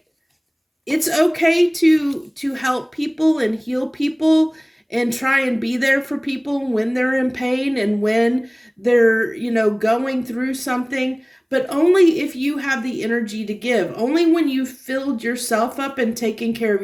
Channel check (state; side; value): identical; both; correlation 1.00